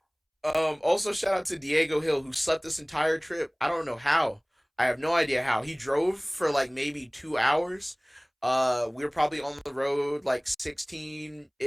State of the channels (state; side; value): identical; both; correlation 1.00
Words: Also shout out to Diego Hill who slept this entire trip. I don't know how. I have no idea how. He drove for like maybe 2 hours. We were probably on the road like